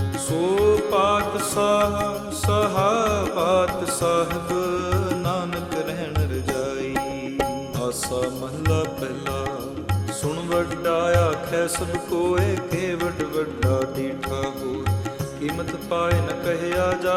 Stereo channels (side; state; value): both; identical; correlation 1.00